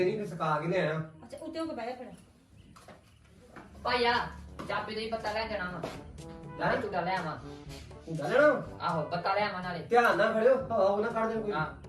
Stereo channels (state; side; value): identical; both; correlation 1.00